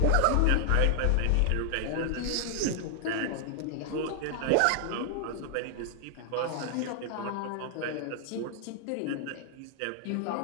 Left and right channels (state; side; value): different; both; correlation 0.00